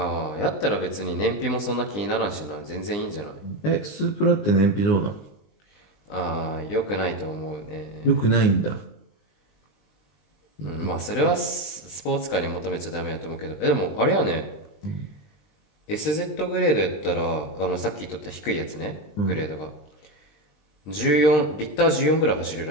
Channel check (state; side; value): late; right; 20 ms